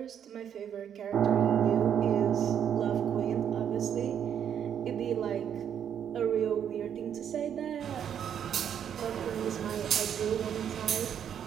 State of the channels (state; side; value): quieter; left; 8.8 dB